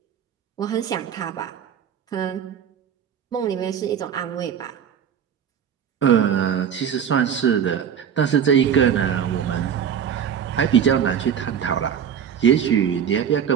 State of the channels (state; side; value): quieter; left; 8.4 dB